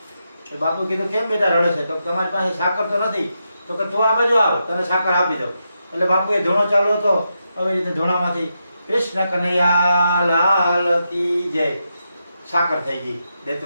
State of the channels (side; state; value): both; inverted; correlation -0.85